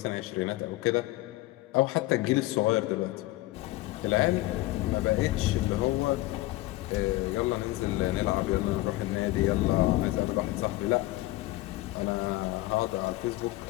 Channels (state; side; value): quieter; right; 18.2 dB